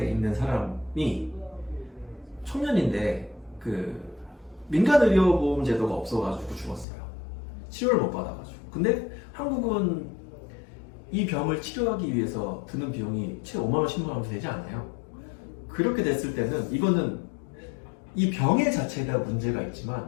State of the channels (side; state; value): right; drops out; at 6.9 s